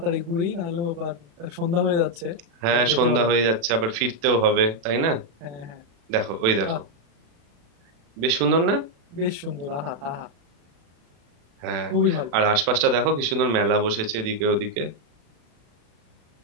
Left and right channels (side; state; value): left; late; 36 ms